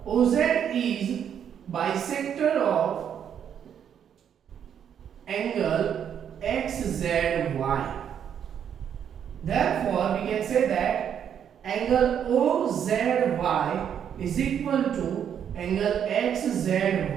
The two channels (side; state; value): left; quieter; 8.7 dB